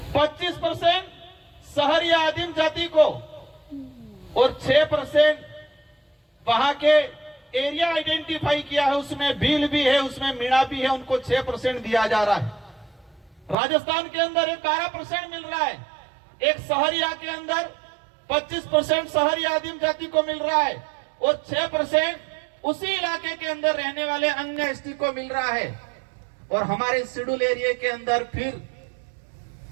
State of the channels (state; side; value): drops out; left; at 13.6 s